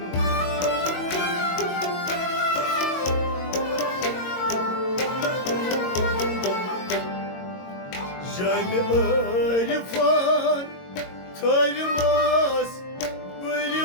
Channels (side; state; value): right; late; 22 ms